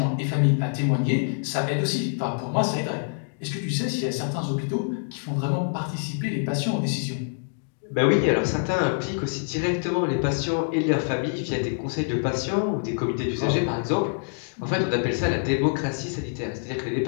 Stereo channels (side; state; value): right; silent; digital silence